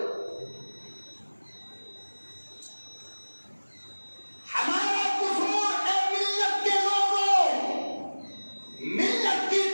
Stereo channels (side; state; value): both; inverted; correlation -1.00